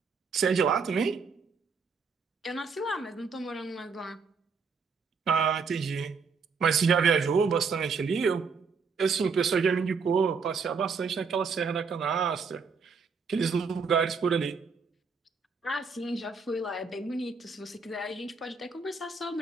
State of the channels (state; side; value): quieter; left; 5.2 dB